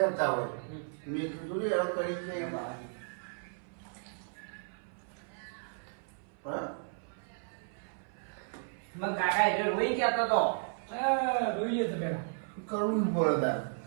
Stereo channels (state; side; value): silent; left; 55 dB below the other